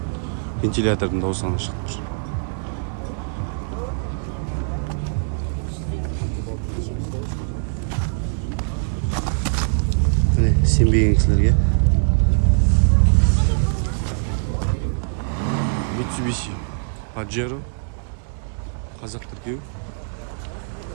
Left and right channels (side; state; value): left; silent; digital silence